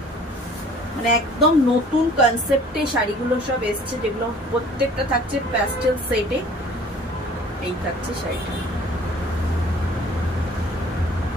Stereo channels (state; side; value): normal; both; correlation 0.51